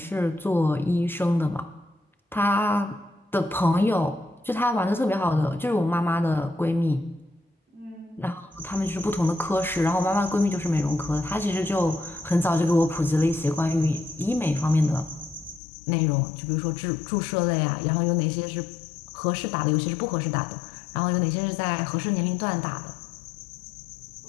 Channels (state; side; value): drops out; right; at 15.6 s